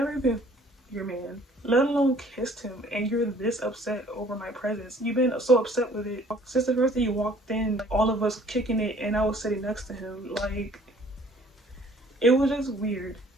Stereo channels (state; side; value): normal; both; correlation 0.56